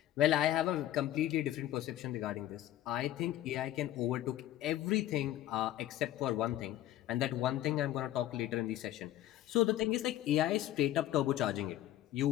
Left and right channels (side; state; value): right; quieter; 13.4 dB